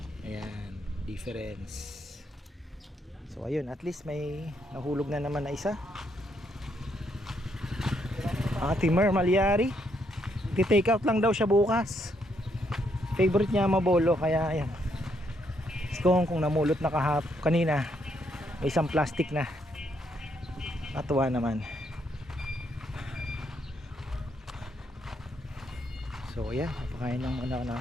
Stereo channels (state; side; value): normal; both; correlation 0.74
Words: Ayan, difference. So ayun, at least may nahulog na naman na isa. Ate Mer Maliari, ti-take out lang daw siya bukas. Favorite niya mabolo, kaya ayan. Kung namulot na kanina, may isang plastic na. Natuwa naman. So ayan, napakain lang muna na